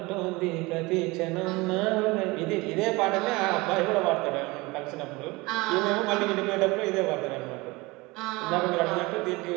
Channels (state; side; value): quieter; left; 23.3 dB